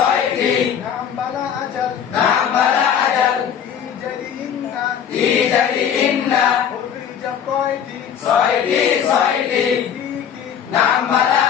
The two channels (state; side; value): quieter; right; 8.5 dB